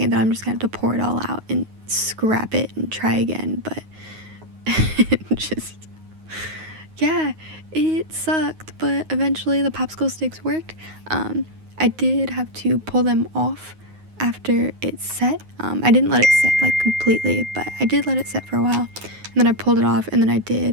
that I'm just gonna have to pour it all out and scrap it and try again, but just, yeah, it sucked, but eventually the popsicle sticks worked. I did have to pull them off after it set. I didn't let it set like completely, but I did let it set for a while, and then I pulled it off, and then I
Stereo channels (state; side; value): late; left; 9.5 ms